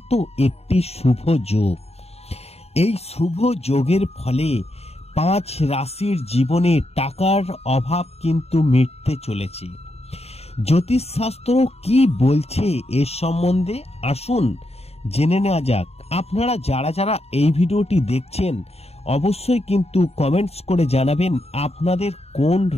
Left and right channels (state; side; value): late; right; 0.30 ms